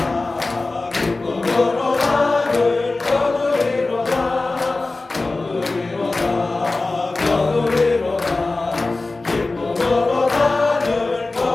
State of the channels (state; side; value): quieter; right; 3.3 dB